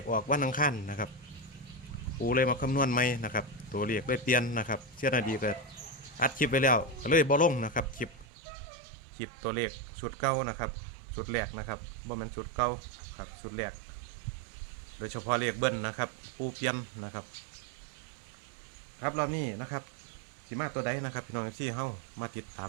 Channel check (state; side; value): drops out; left; at 8.2 s